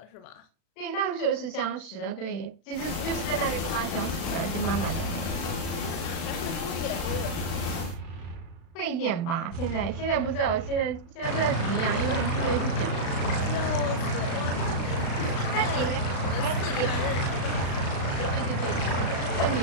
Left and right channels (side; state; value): right; late; 36 ms